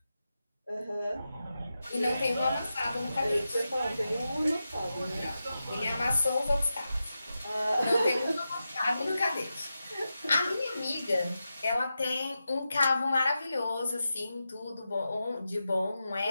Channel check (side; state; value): both; inverted; correlation -0.90